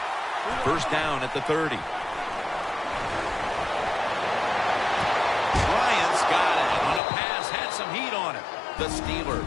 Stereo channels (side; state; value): right; drops out; at 7.0 s